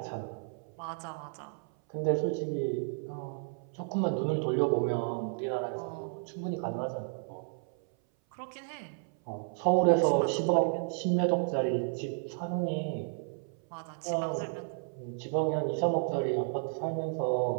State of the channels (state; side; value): silent; left; 56 dB below the other